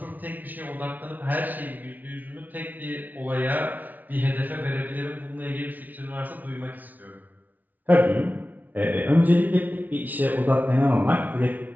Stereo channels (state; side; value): late; left; 0.079 ms